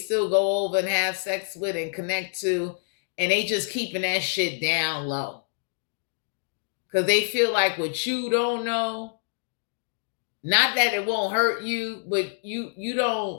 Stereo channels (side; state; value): right; silent; digital silence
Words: go over and have sex with and connect to, and they just keeping that shit down low. Because they feel like what you don't know, not that it won't hurt you, but you